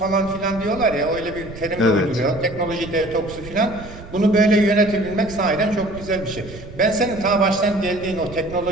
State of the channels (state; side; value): noise; right; rumble, 15 dB below the sound